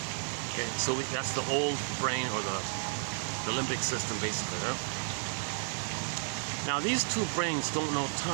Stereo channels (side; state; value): left; silent; 56 dB below the other